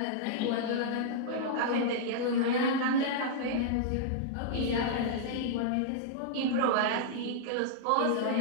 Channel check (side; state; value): both; different; correlation -0.02